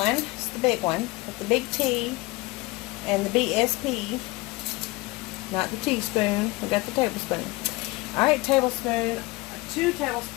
it's the big one, with the big T and the BSP. Not the teaspoon, we got the tablespoon. Alright, tablespoon, 2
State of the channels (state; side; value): quieter; right; 22.2 dB